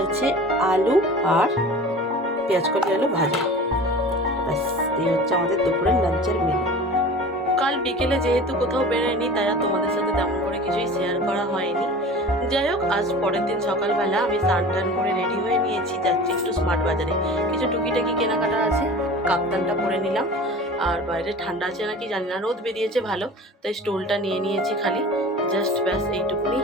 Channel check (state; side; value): normal; both; correlation 0.38